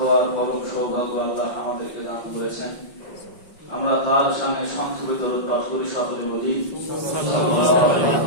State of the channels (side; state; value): right; late; 5.5 ms